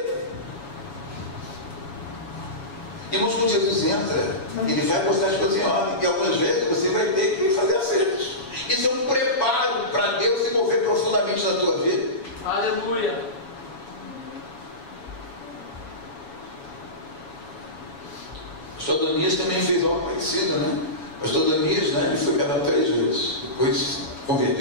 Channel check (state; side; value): late; right; 7.1 ms